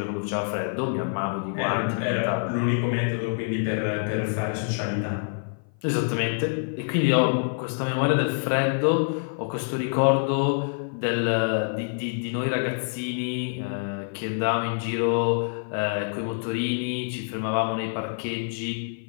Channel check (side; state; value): right; silent; 56 dB below the other